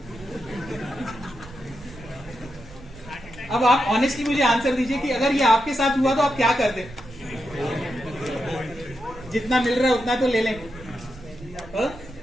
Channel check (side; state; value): right; noise; rumble, 18 dB below the sound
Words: अब आप ऑनेस्टली मुझे आंसर दीजिए कि अगर ये आपके साथ हुआ तो आप क्या करते? जितना मिल रहा है उतना तो ले लें।